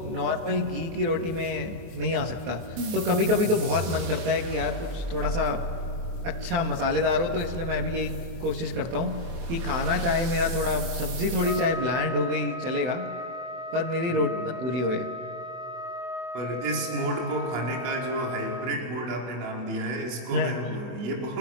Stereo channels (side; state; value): left; late; 24 ms